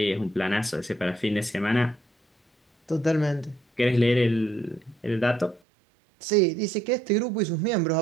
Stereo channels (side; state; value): left; drops out; at 5.6 s